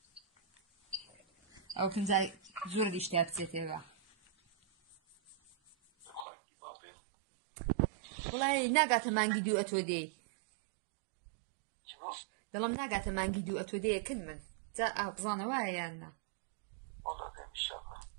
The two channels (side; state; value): left; drops out; at 6.2 s